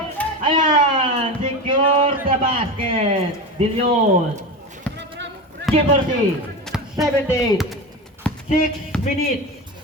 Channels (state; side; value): normal; both; correlation 0.24